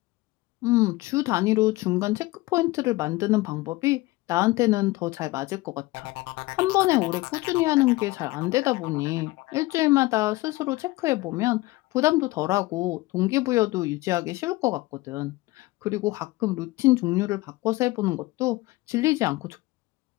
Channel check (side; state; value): right; quieter; 20.2 dB